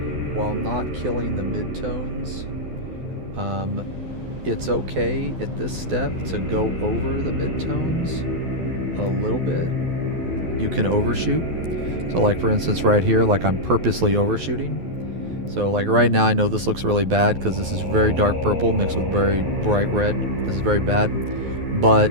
while not killing the midtones. It's okay at this step to go over the midtones a little bit. You can overshoot. So like for instance right here, like I'm purposely overshooting. So like right now I know this looks really bad because this is very dark purple mixed with very bright red. This is very bad.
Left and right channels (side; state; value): left; late; 12 ms